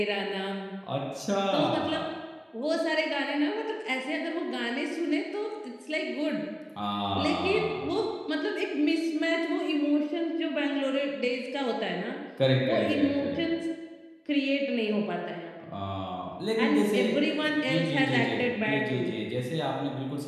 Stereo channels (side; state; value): both; identical; correlation 1.00